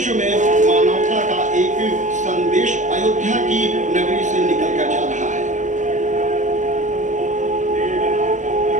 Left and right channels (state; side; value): late; left; 0.36 ms